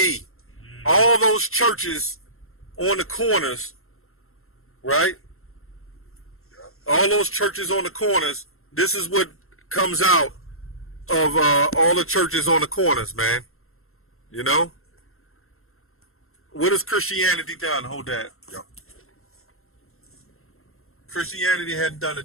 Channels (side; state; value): right; late; 0.62 ms